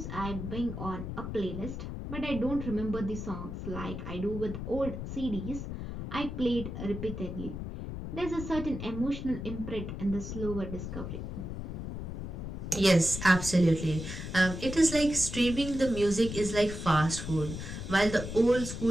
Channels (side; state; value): left; noise; rumble, 7 dB below the sound